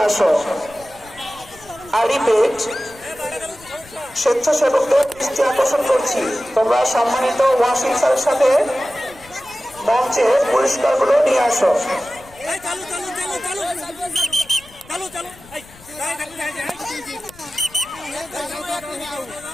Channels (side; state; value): left; noise; rumble, 23 dB below the sound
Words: আসো। আই রিপিট, স্বেচ্ছাসেবকদের দৃষ্টি আকর্ষণ করছি, তোমরা সম্মানিত ওয়াসিম স্যারের সাথে মঞ্চে পুরস্কারগুলো নিয়ে আসো।